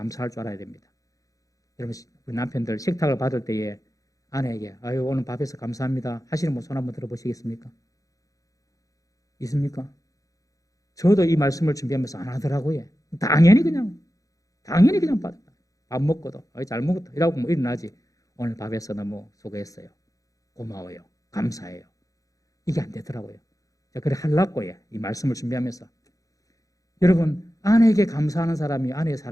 줄 알아야 됩니다. 여러분, 우리 남편들 식탁을 받을 때에 아내에게 아유 오늘 밥해서 감사합니다 하시는 분 손 한번 들어보시겠습니까? 있습니까? 저도 이 말씀을 준비하면서 안 하더라고요. 당연히 그냥 받아. 밥 먹고도 잘 먹었다 이라고 뭐 일어나지. 오늘 밥해서 너무 수고했어요. 고마워요. 감사해요. 이게 안 되더라고요. 그래 하려고요. 이 말씀을 준비하면서 여러분, 아내에게 감사하는 사람이 아내의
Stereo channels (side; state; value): right; late; 0.17 ms